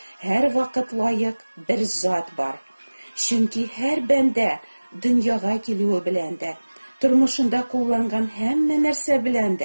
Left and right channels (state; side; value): inverted; both; correlation -1.00